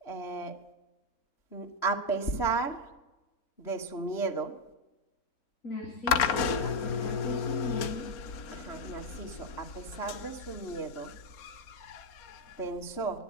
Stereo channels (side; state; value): right; late; 4.2 ms